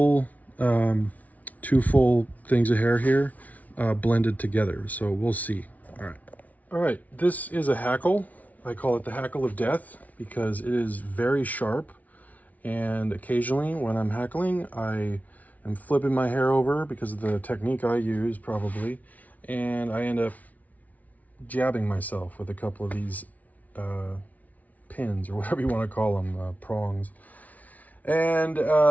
things of hair here blended together, so we'll see. All right, this is a hackle. I call it the hackle of death because it is very sharp, and occasionally when I'm hackling I am flipping my hair over because of the technique I use probably, and I end up jabbing myself with a couple of these pins, or whatever you want to call them, prongs. And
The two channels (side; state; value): right; late; 0.072 ms